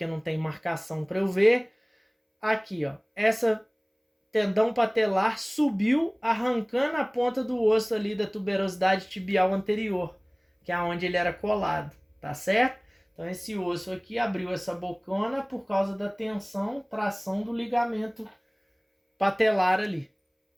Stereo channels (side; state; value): both; identical; correlation 1.00